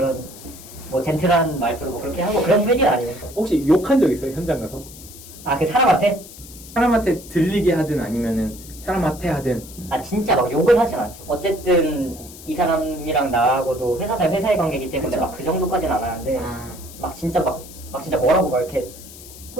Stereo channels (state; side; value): noise; left; hiss, 17 dB below the sound